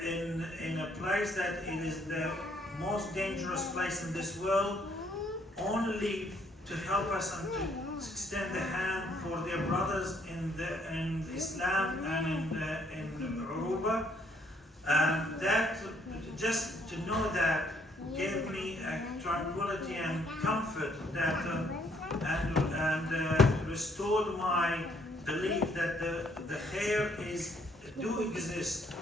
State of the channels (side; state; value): both; normal; correlation 0.67